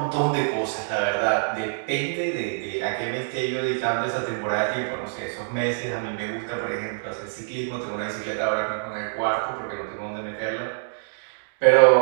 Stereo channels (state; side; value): silent; left; digital silence